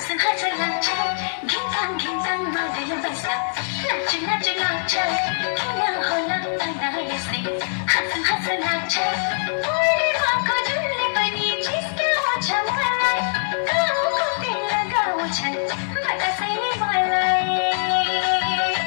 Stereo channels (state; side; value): silent; right; digital silence